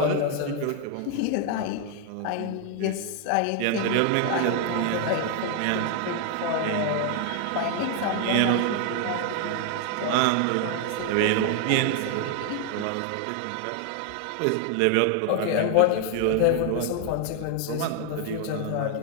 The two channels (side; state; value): both; different; correlation 0.00